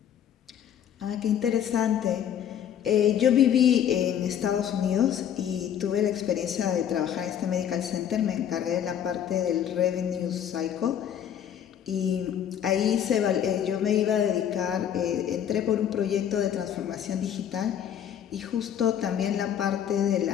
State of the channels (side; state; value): right; quieter; 9.5 dB